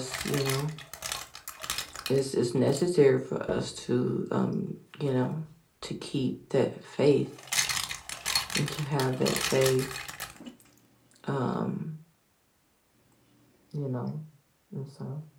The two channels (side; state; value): both; identical; correlation 1.00